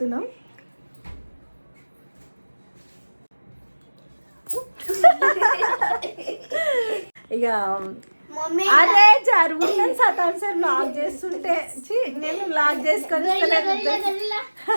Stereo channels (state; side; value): inverted; both; correlation -1.00